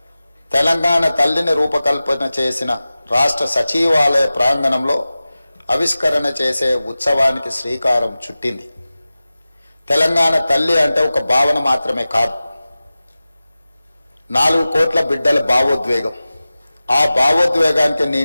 తెలంగాణ తల్లిని రూపకల్పన చేసిన రాష్ట్ర సచివాలయ ప్రాంగణంలో ఆవిష్కరణ చేసే ఉత్సవానికి శ్రీకారం చుట్టింది. తెలంగాణ తల్లి అంటే ఒక భావన మాత్రమే కాదు, 4 కోట్ల బిడ్డల భావోద్వేగం. ఆ భావోద్వేగానికి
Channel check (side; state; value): both; inverted; correlation -0.96